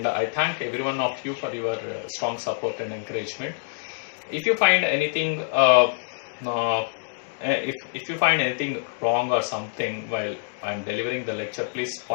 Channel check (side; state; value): right; silent; digital silence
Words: thank every one of you for your strong support and encouragement. If you find anything if you find anything wrong or something while I'm delivering the lecture, please